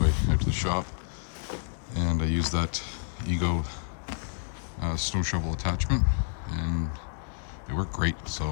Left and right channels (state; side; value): silent; right; digital silence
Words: out to the shop. And I use that EGO snow shovel attachment, and it worked great.